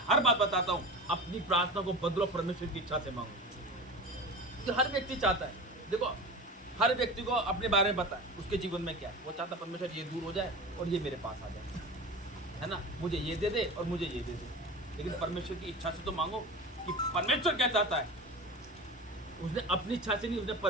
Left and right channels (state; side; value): normal; both; correlation 0.31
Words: हर बात बताता हूँ, अपनी प्रार्थना को बदलो, परमेश्वर की इच्छा से मांगो। तो हर व्यक्ति चाहता है, देखो हर व्यक्ति को अपने बारे में पता है उसके जीवन में क्या है। वो चाहता है परमेश्वर ये दूर हो जाए और ये मेरे पास आ जाए, है ना, मुझे ये दे दे और मुझे ये दे दे। लेकिन परमेश्वर की इच्छा से तो मांगो कि परमेश्वर क्या चाहता है। उसने अपनी इच्छा से नहीं, उसने